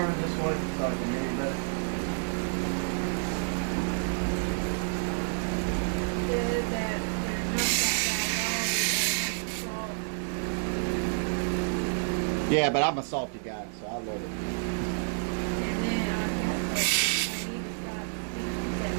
this way so I can hear you better? Yeah, but I'm a salty guy, so I love it.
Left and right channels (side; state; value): left; silent; digital silence